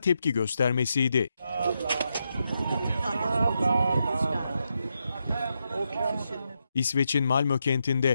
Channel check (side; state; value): both; inverted; correlation -0.84